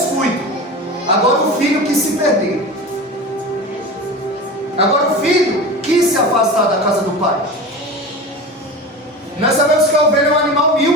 Agora o filho quis se perder, agora o filho quis se afastar da casa do pai. Nós sabemos que a ovelha é um animal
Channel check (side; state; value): both; normal; correlation 0.30